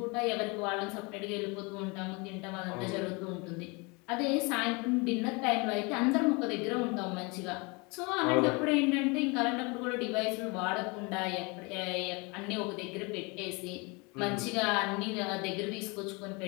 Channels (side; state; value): right; quieter; 28.7 dB